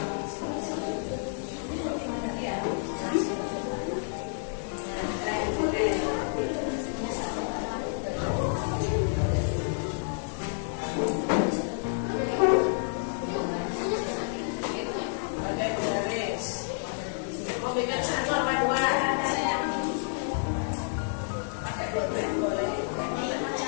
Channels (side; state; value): right; silent; 58 dB below the other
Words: Bikin satu apa dua sayang, pakai boleh